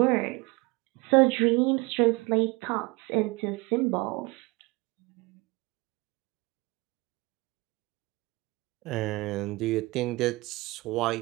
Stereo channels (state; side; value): quieter; left; 23.7 dB